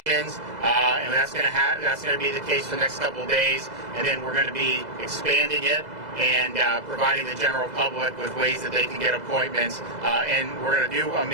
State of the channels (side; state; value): left; late; 2.0 ms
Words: and that's going to be the case for the next couple of days. And then we're going to be expanding it and providing the general public with ways that they can get appointments. And we're going to do a